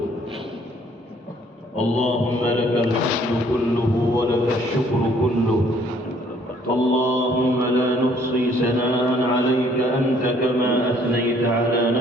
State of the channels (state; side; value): normal; both; correlation 0.61